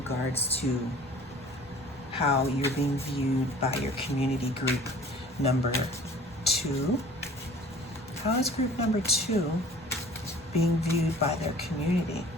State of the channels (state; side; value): normal; both; correlation 0.47